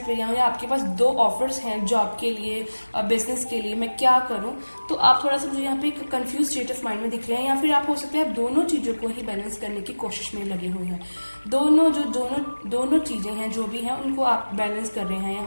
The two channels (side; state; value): both; inverted; correlation -1.00